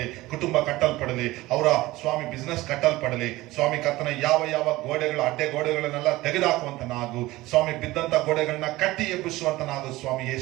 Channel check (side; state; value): left; quieter; 18.7 dB